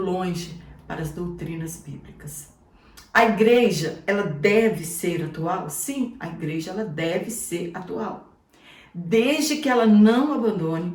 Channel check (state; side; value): identical; both; correlation 1.00